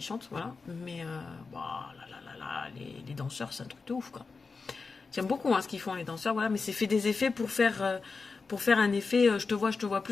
chantent, voilà. Mais les danseurs, c'est un truc de ouf, quoi. J'aime beaucoup ce qu'ils font les danseurs, voilà. Mais c'est fait des effets pour faire un effet je te vois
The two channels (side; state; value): right; quieter; 4.5 dB